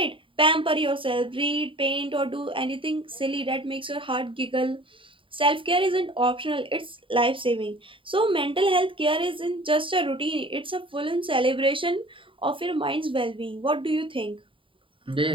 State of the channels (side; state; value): left; late; 0.25 ms